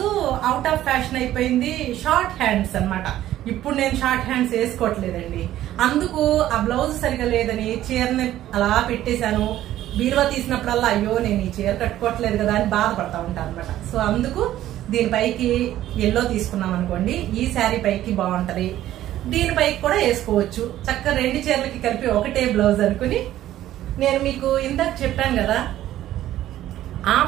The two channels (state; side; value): quieter; left; 13.3 dB